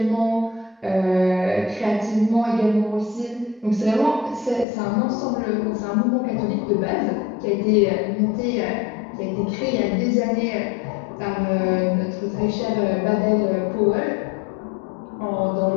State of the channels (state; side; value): drops out; right; at 4.7 s